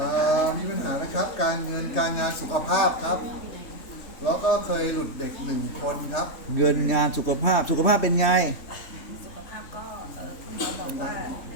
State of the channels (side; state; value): right; late; 3.1 ms